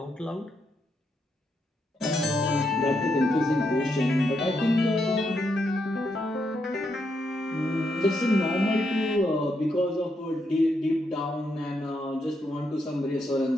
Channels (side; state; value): both; normal; correlation 0.80